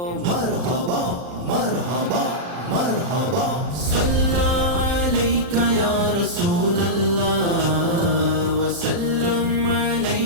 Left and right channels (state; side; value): late; left; 40 ms